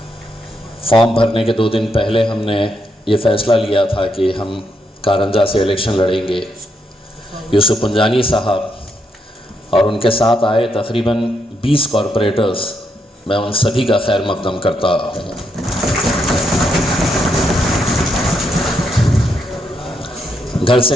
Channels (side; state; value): both; normal; correlation 0.79